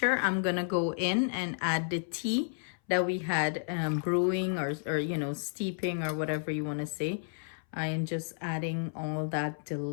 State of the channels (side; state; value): right; silent; 57 dB below the other